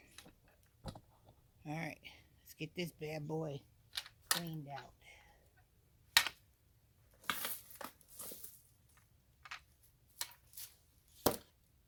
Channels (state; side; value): identical; both; correlation 1.00